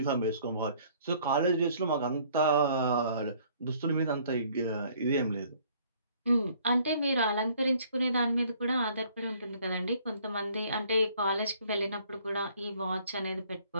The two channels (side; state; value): both; inverted; correlation -0.59